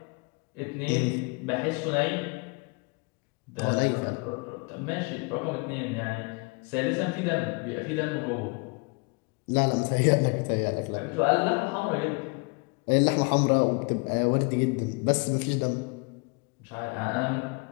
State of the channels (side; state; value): right; quieter; 30.6 dB